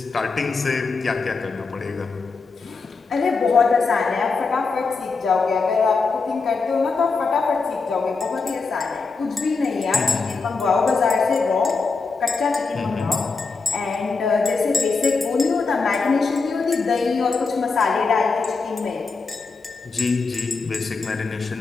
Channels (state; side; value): quieter; right; 4.4 dB